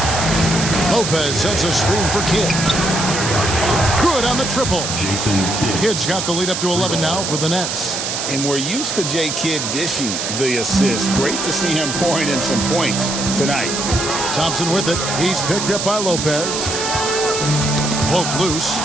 Lopez sets a screen for Kidd. Good on the triple. Jason Kidd. Kidd's got the lead up to 11 now for the Nets. And we're used to J. Kidd dishing the assist. Great to see him pouring in some points tonight. Thompson with it. He's picked up by Lopez. Poked loose.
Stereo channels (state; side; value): noise; right; hiss, 3 dB below the sound